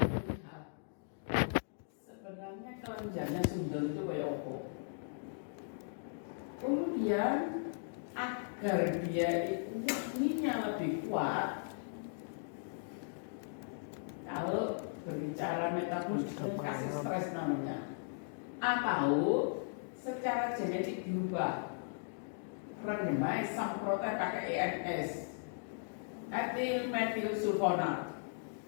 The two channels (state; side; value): silent; right; digital silence